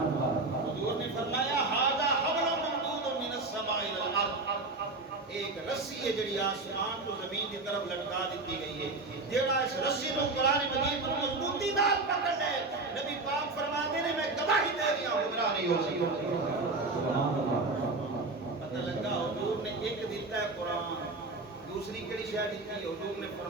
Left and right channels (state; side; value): quieter; left; 3.3 dB